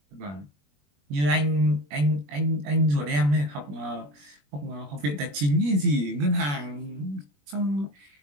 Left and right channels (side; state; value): left; late; 21 ms